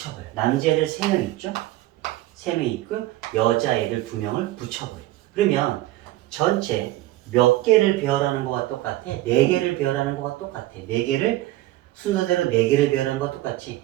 남자애들 3명 있죠? 3명 있고 여자애들 2명을 붙여버려. 그러면 전체 몇 개를 배열하는 거와 똑같아? 4개를 배열하는 거와 똑같아. 4개를 순서대로 4개를 배열하는 거와 똑같지?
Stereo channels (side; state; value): left; quieter; 16.4 dB